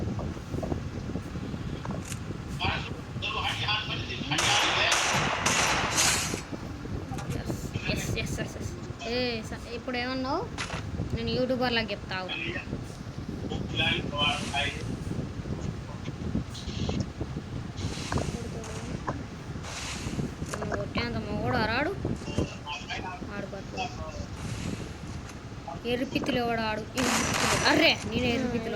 ఇప్పుడు ఏమన్నావు? నేను యూట్యూబర్లకు చెప్తావు. కొట్టేంత మొగోడు రాడు ఆడుకోవచ్చు. ఎర్రిపిత్తులు ఎవడు ఆడు? అర్రే నేను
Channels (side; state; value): both; identical; correlation 1.00